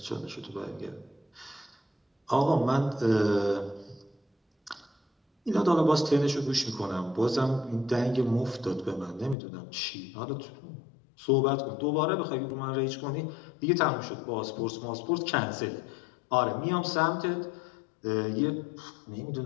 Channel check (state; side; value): drops out; right; at 9.3 s